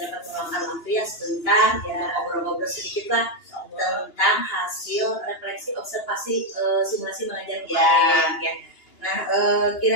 dapat meluangkan waktu ya sebentar ya ngobrol-ngobrol sedikit lah tentang hasil refleksi observasi simulasi mengajar kemarin ya. Nah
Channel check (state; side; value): late; right; 2.9 ms